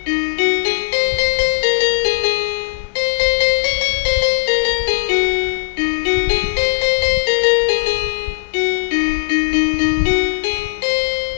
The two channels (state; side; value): silent; right; 59 dB below the other